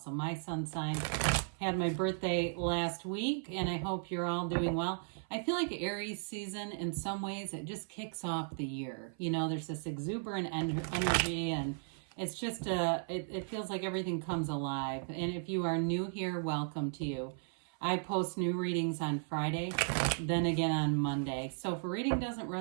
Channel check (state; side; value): silent; left; 54 dB below the other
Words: my sun sign. Had my birthday last week and I hope you're all doing well. I feel like Aries season, in some ways, it just kicks off the year. You know, there's this exuberant energy, and it's just, it feels like everything comes alive. And if you are new here, welcome to you. I post new readings on Friday, then again on Monday. So if a reading doesn't